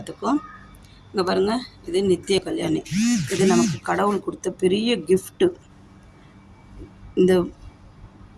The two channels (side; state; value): both; identical; correlation 1.00